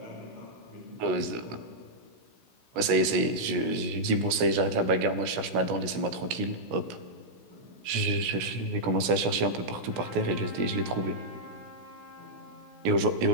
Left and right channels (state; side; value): late; left; 17 ms